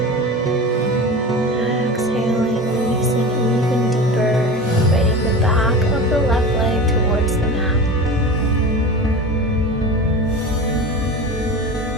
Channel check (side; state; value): both; normal; correlation 0.31